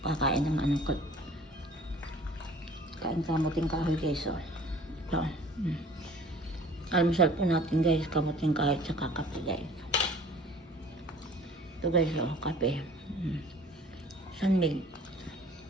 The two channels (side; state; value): both; normal; correlation 0.49